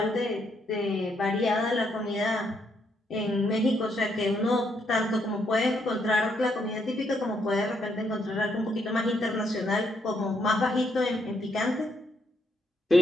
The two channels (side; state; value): both; normal; correlation 0.75